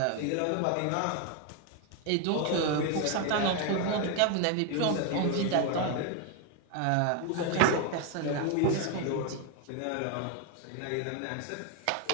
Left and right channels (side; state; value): both; different; correlation 0.01